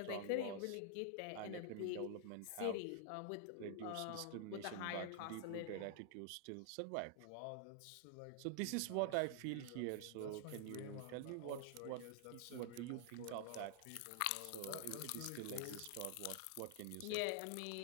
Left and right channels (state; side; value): different; both; correlation 0.00